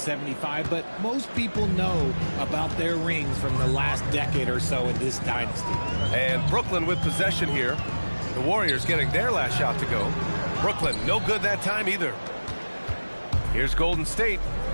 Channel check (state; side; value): inverted; both; correlation -1.00